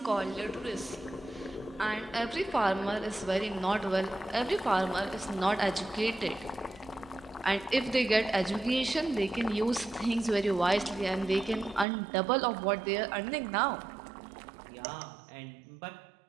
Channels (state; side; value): drops out; left; at 11.9 s